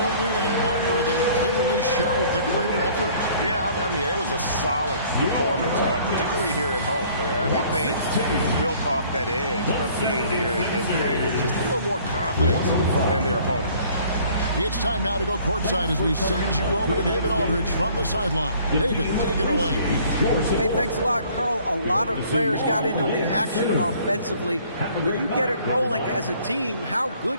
win and one where they clearly showed the greater effort. Yeah, I mean, it was a solid performance, particularly here at home. I think they built off that edge of being here and playing with just a little more confidence than their opponent. It's time now to go courtside as we send you over to David Aldridge from the sideline. David, take it away. Hey, thanks a lot, Carl. A lot of players got in on the action offensively. When you get it rolling as a team, how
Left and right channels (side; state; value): both; inverted; correlation -0.56